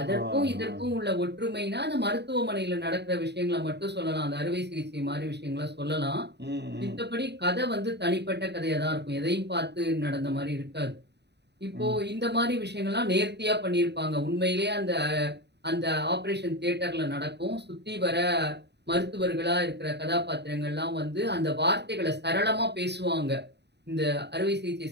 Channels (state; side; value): late; left; 0.50 ms